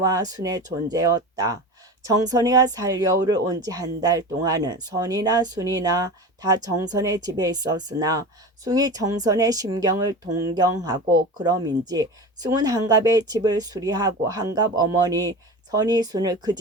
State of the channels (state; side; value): normal; both; correlation 0.30